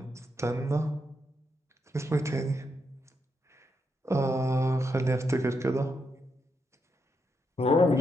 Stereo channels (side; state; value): both; normal; correlation 0.81